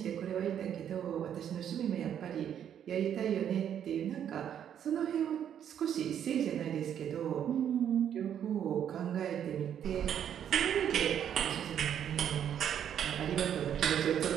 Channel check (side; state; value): left; quieter; 9.4 dB